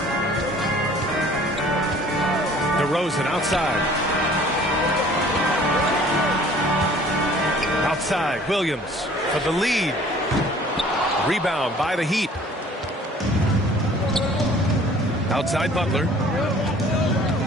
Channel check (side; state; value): both; normal; correlation 0.52